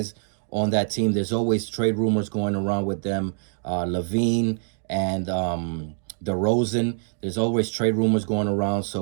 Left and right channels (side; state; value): left; silent; digital silence